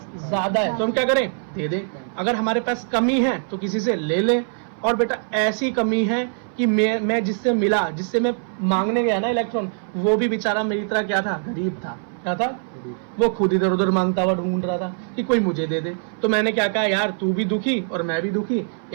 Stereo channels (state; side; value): silent; left; 61 dB below the other